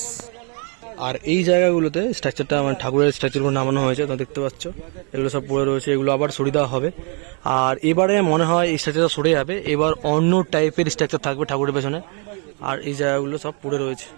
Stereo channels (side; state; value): left; quieter; 37.0 dB